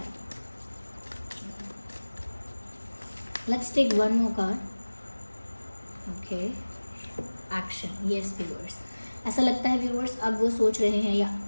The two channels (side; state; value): both; inverted; correlation -1.00